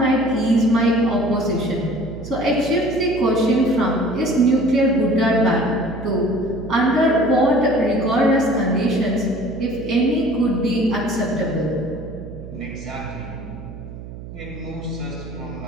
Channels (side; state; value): right; noise; hum, 13 dB below the sound